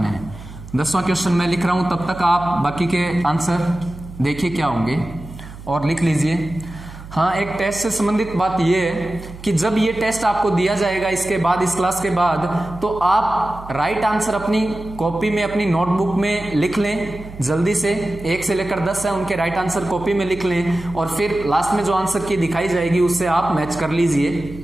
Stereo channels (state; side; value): noise; right; hum, 15 dB below the sound